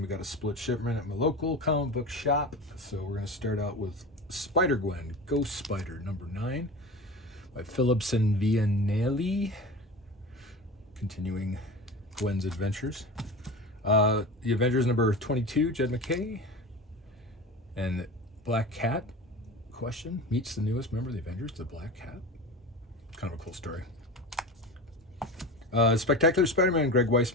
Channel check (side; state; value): both; normal; correlation 0.31